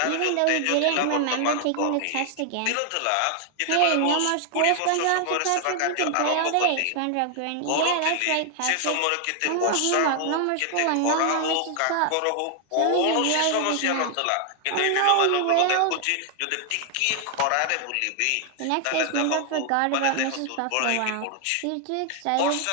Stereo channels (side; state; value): both; different; correlation 0.00